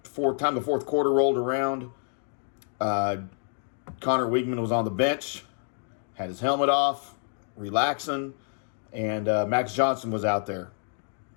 time the fourth quarter rolled around, Connor Weigman was on the bench, had his helmet off, relaxing, and Max Johnson was out there.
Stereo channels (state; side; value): silent; right; digital silence